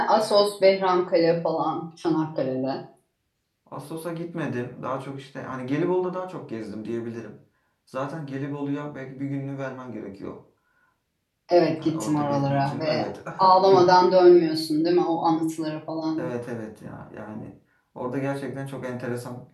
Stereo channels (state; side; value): identical; both; correlation 1.00